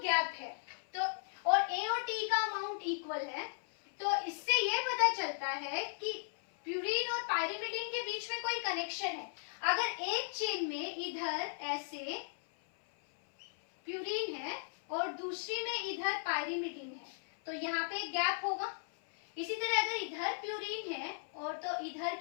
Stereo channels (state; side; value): silent; right; 53 dB below the other